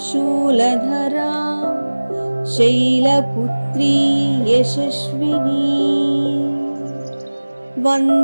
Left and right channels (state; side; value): inverted; both; correlation -1.00